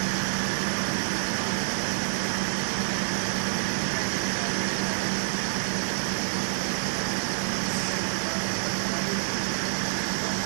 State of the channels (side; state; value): left; silent; digital silence